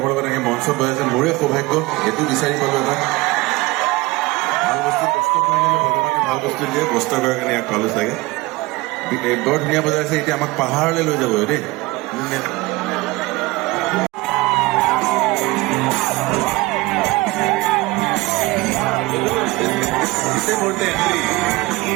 লগত এনেকৈ মঞ্চত বজাইছে, মোৰে সৌভাগ্য, এইটো বিচাৰি পালোঁ। এটা ভাল বস্তু কষ্ট কৰিলে ভগৱানে ভাল বস্তু দিয়ে, কষ্ট কৰাৰ কাৰণে ইয়াক পালোঁ চাগে। বৰ ধুনীয়া বজাইছে, এতিয়া আমাক পাহাৰলৈ লৈ যাব দেই।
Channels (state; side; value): quieter; left; 21.4 dB